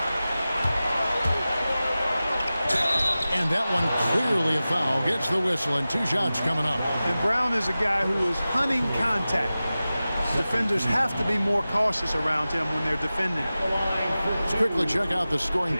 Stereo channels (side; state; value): both; inverted; correlation -0.96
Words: And that one clearly a foul. Gets the whistle and 2 shots coming up. And Brown is a guy who is hunting contact. Defenders have to be more cautious around him when they're defending. Let's quickly check out the scoring